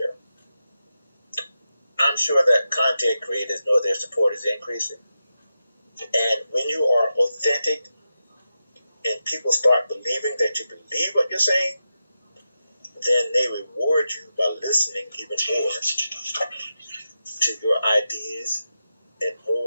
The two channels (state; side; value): inverted; both; correlation -0.89